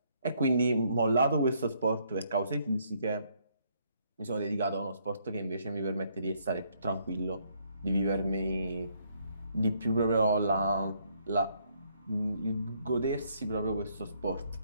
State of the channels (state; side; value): inverted; both; correlation -0.70